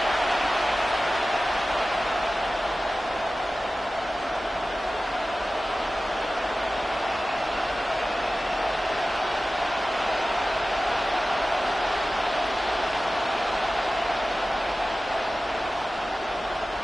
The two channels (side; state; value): both; normal; correlation 0.96